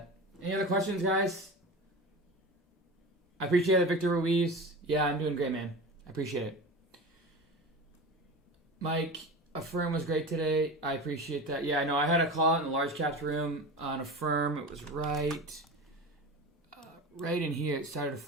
Any other questions, guys? I appreciate it, Victor Ruiz. Yeah, I'm doing great, man. I appreciate it. Mike, Affirm was great today. I appreciate that. Yeah, I know. I had a call out in the large caps room on Affirm. It was right in here. It started to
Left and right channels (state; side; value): normal; both; correlation 0.30